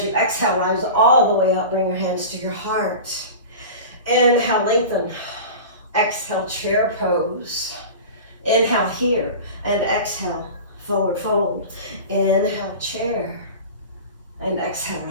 you exhale, rise all the way up, bring your hands to your heart. Inhale, lengthen. Exhale, chair pose. Inhale here, and exhale, forward fold. Inhale, chair, and exhale,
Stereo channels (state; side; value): inverted; both; correlation -0.33